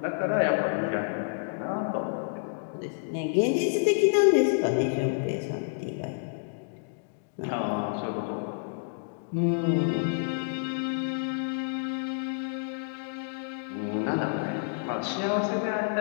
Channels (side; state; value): right; silent; digital silence